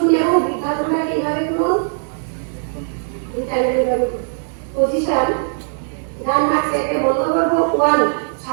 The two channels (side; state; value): left; silent; digital silence